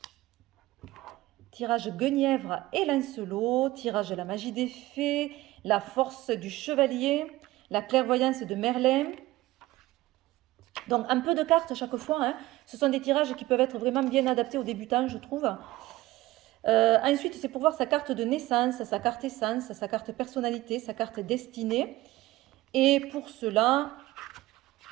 Tirage Guenièvre et Lancelot. Tirage la magie des fées. La force du chevalier. La clairvoyance de Merlin. Donc un peu de cartes chaque fois. Hein. Ce sont des tirages qui peuvent être vraiment bien adaptés aux débutants, je trouve. Ensuite, c'est pour voir sa carte de naissance, sa carte essence, sa carte personnalité, sa carte destinée. Et pour cela,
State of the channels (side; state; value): left; quieter; 17.8 dB